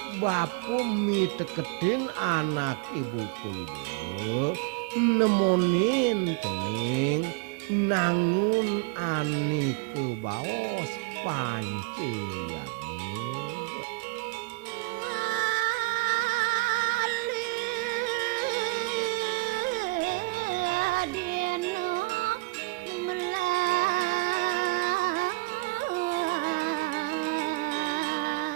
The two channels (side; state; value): left; quieter; 25.4 dB